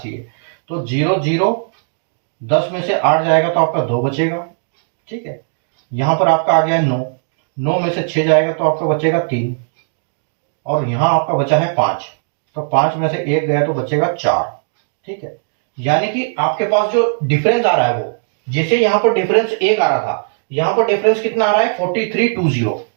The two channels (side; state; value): left; silent; digital silence